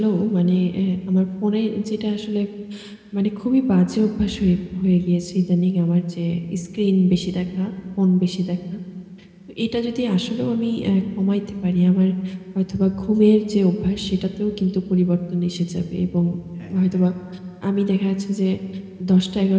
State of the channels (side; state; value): both; identical; correlation 1.00